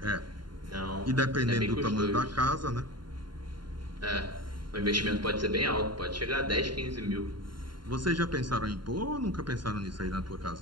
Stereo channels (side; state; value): left; late; 0.72 ms